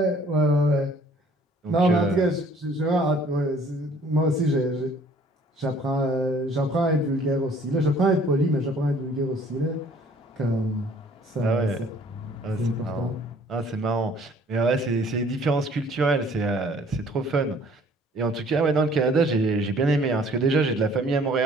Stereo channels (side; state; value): both; normal; correlation 0.56